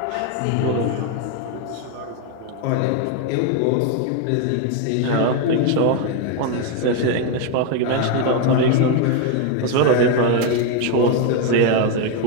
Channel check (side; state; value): both; different; correlation 0.01